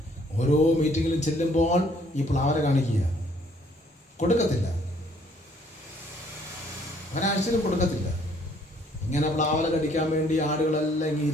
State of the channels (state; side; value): normal; both; correlation 0.63